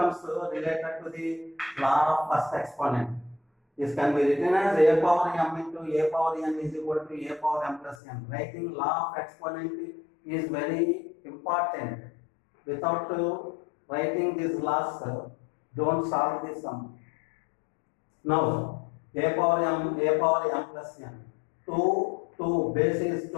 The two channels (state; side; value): drops out; right; at 8.0 s